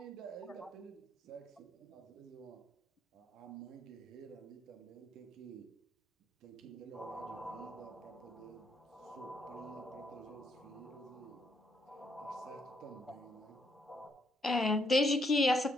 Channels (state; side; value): normal; both; correlation 0.74